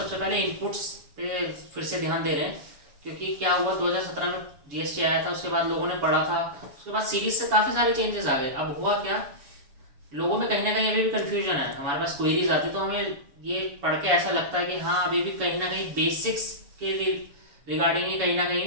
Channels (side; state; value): left; late; 7.1 ms